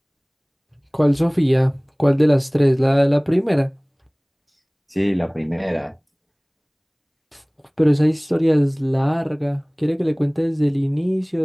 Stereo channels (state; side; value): identical; both; correlation 1.00